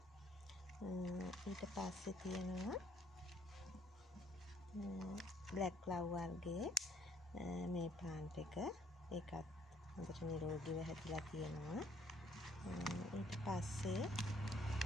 ඊට පස්සේ තියෙනවා බ්ලැක් ලව් වර්ගයේ මේ ප්ලාන්ට් එක. ඒකත් හොඳට නිරෝගීව හැදිලා තියෙනවා. ඊට පස්සේ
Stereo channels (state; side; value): normal; both; correlation 0.64